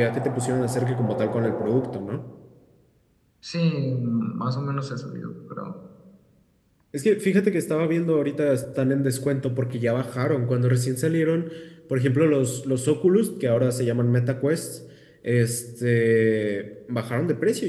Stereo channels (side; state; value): both; identical; correlation 1.00